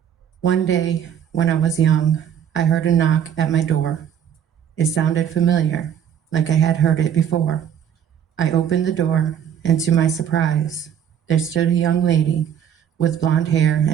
One day, when I was young, I heard a knock at my door. It sounded familiar, like I had heard it before. I opened the door, and to my surprise, there stood a young lady with blonde hair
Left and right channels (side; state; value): left; quieter; 9.0 dB